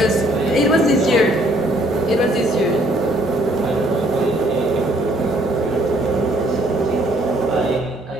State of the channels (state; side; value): normal; both; correlation 0.64